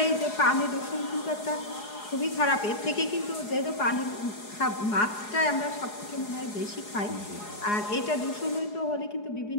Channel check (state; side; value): late; right; 4.8 ms